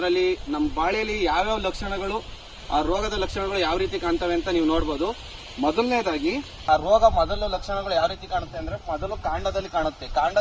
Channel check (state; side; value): identical; both; correlation 1.00